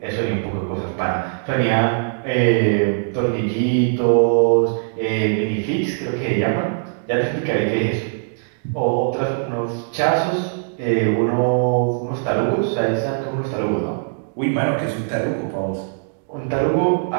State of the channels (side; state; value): left; silent; digital silence